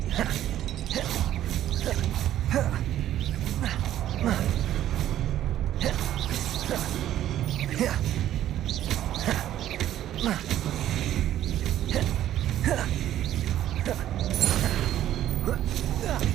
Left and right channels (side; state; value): left; quieter; 12.3 dB